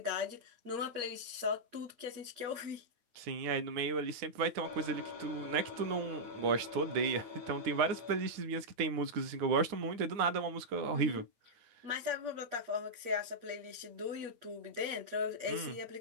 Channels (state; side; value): late; left; 9.7 ms